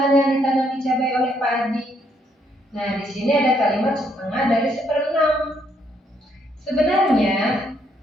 yang ditanami cabai oleh Pak Adi? Nah, di sini ada kalimat setengah dari 1/6. Sebenarnya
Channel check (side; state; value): both; normal; correlation 0.72